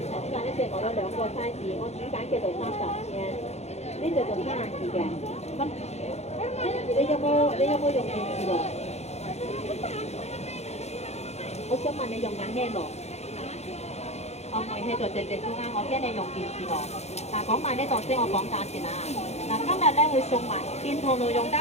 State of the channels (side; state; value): right; late; 0.31 ms